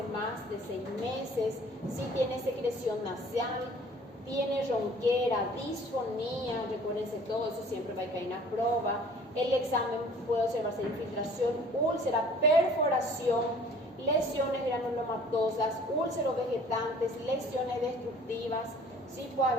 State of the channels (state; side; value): normal; both; correlation 0.51